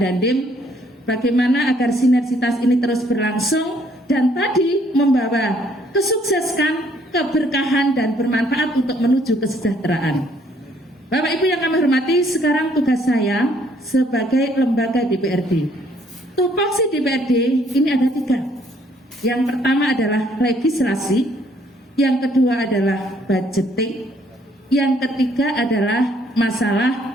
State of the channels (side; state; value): both; normal; correlation 0.65